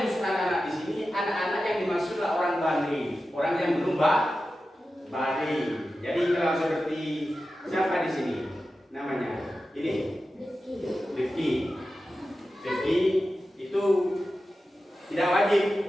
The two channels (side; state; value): both; normal; correlation 0.93